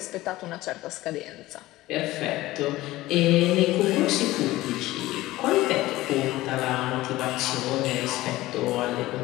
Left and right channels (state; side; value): quieter; right; 17.5 dB